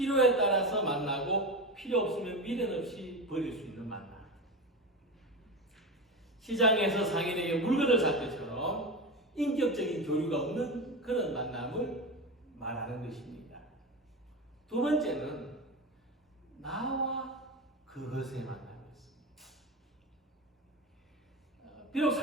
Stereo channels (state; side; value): normal; both; correlation 0.22